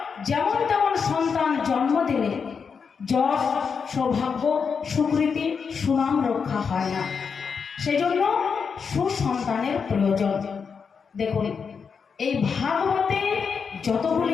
যেমন তেমন সন্তান জন্ম দিলে যশ, সৌভাগ্য, সুকৃতি, সুনাম রক্ষা হয় না। সেজন্য সুসন্তানের প্রয়োজন। দেখুন, এই ভাগবতে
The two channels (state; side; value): quieter; right; 6.0 dB